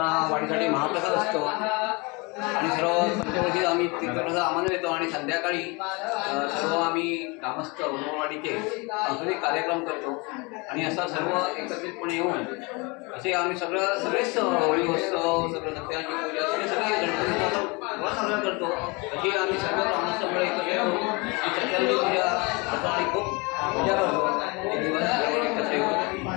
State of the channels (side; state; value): right; quieter; 27.8 dB